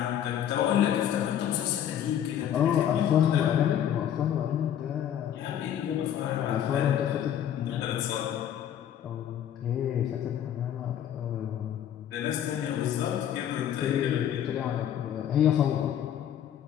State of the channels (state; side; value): quieter; right; 10.0 dB